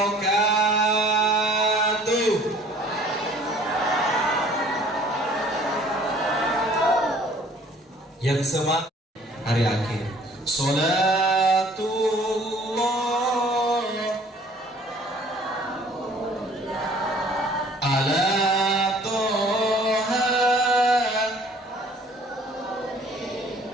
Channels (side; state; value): both; normal; correlation 0.54